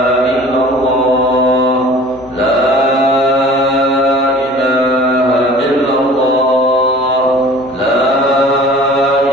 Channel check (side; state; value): left; noise; hum, 25 dB below the sound